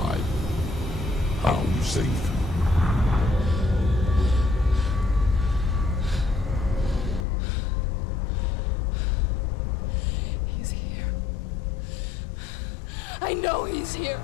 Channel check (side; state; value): right; drops out; at 7.2 s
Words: How you saved him? He's here. I know he's here.